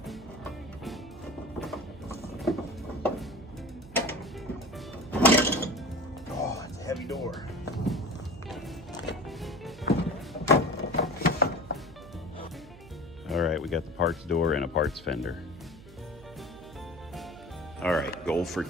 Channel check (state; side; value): noise; right; hum, 18 dB below the sound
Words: Oh, it's a heavy door. All right, we got the parts door and a parts fender. All right, goal for